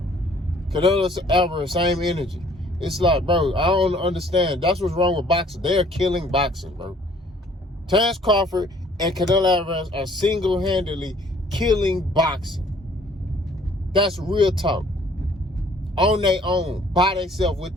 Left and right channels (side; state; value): both; normal; correlation 0.57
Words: Canelo Álvarez, same energy. It's like, bro, I don't understand. That's what's wrong with boxing. They're killing boxing, bro. Terrence Crawford and Canelo Álvarez are single-handedly killing boxing. That's real talk. On their own, by themselves with